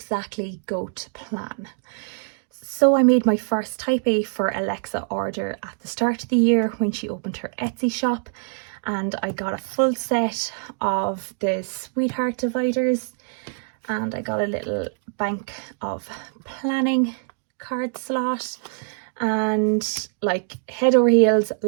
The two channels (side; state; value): left; silent; digital silence